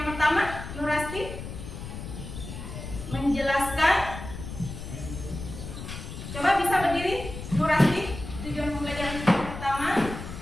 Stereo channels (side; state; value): left; noise; rumble, 9 dB below the sound